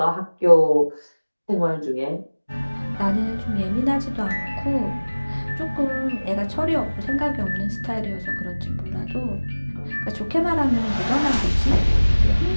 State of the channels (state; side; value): inverted; both; correlation -1.00